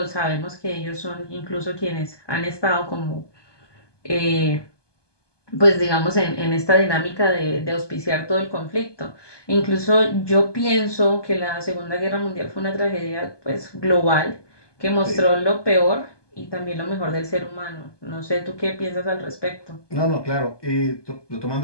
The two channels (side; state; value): right; late; 1.2 ms